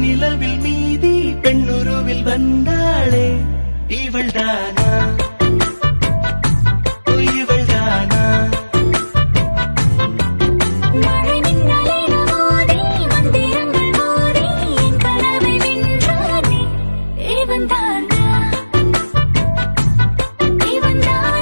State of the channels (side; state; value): both; inverted; correlation -1.00